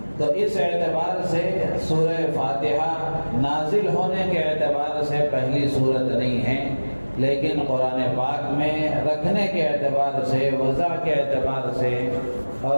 تو اس اعتبار سے سورہ فاتحہ نازل ہونے کے اعتبار سے پہلی سورت نہیں ہے، لیکن قرآن پاک میں رکھنے کے اعتبار سے، وضع کے اعتبار سے،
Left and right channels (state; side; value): inverted; both; correlation -1.00